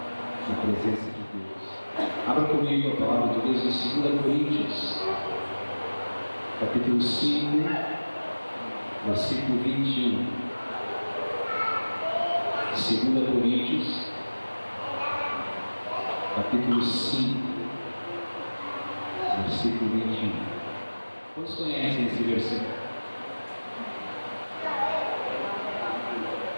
na presença de Deus. Abra comigo a palavra de Deus em 2 Coríntios, capítulo 5, versículo 21. 2 Coríntios, capítulo 5, versículo 21. Quantos conhecem esse versículo?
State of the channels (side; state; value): both; inverted; correlation -1.00